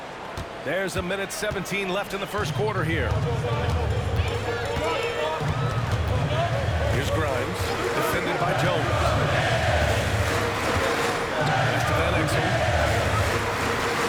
There's a minute 17 left in the first quarter here. Here's Grimes, defended by Jones. Pass to Van Exel.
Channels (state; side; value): identical; both; correlation 1.00